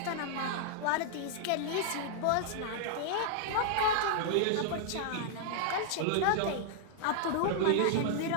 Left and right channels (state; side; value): different; both; correlation -0.01